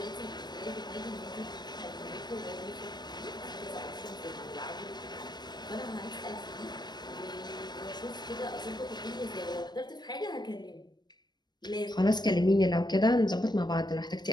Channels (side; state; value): right; late; 0.21 ms